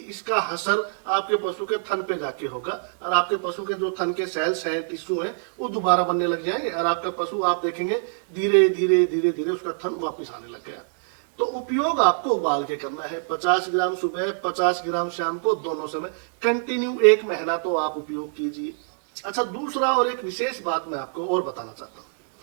इसका असर आपके पशु के थन पे जाके होगा और आपके पशु के जो थन के सेल्स हैं, टिश्यू हैं, वो दोबारा बनने लग जाएंगे और आपका पशु आप देखेंगे धीरे धीरे धीरे धीरे उसका थन वापस आने लग गया। तो उपयोग आपको उबाल के करना है। 50 ग्राम सुबह, 50 ग्राम शाम को, दोनों समय कंटिन्यू 1 महीना तो आप उपयोग कीजिए। अच्छा, दूसरा और एक विशेष बात मैं आपको और बताना चाहता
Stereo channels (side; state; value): left; silent; digital silence